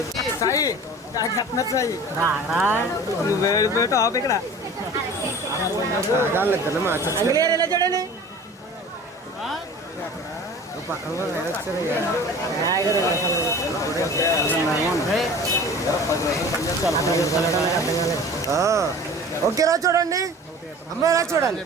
సాయి చెప్తున్నారు సాయి నువ్వు వెళ్ళిపోయి టాప్ ఇక్కడ అంగ్లేర్ ఎలా చూడండి. ఓకే రా చూడండి. అమ్మాయి ఎలా చూడాలి?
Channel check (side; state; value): both; normal; correlation 0.41